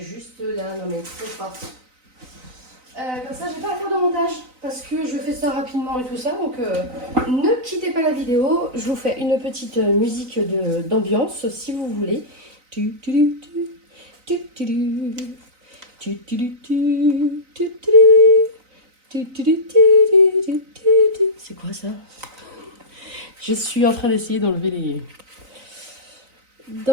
là, non mais trop fort. Comme ça, je n'ai pas à faire de montage. Parce que je fais ça rapidement et tout ça. Donc, ne quittez pas la vidéo. Je vous fais une petite musique d'ambiance, si vous voulez. C'est quoi ça? Je suis en train d'essayer d'enlever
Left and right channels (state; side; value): late; left; 3.9 ms